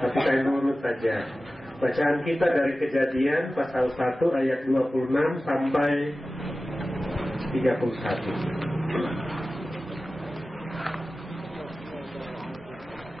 tapi saya nurut saja. Bacaan kita dari Kejadian pasal 1 ayat 26 sampai 31.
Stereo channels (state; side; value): normal; both; correlation 0.95